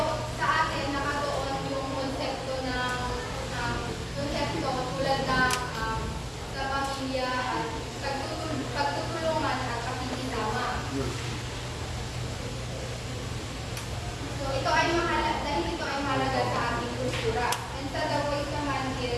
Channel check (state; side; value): identical; both; correlation 1.00